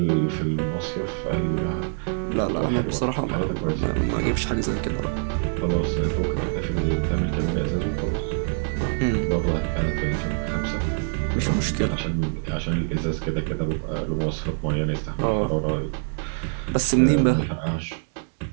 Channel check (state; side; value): silent; left; 59 dB below the other